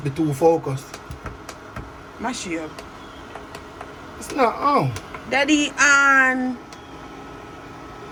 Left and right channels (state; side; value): identical; both; correlation 1.00